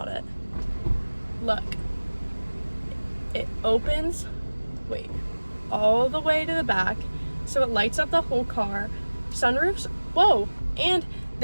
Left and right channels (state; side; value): inverted; both; correlation -1.00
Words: it. Look, it opens, wait, all the way to the back. So it lights up the whole car. Sunroofs, whoa. And